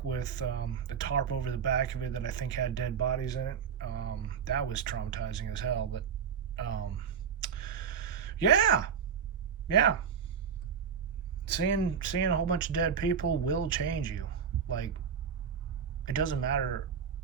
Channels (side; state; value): left; quieter; 7.1 dB